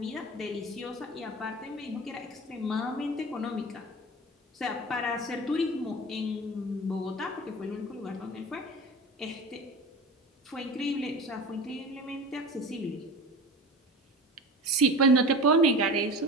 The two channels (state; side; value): normal; both; correlation 0.33